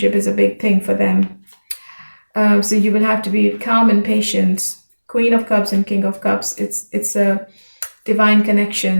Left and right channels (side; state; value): both; inverted; correlation -1.00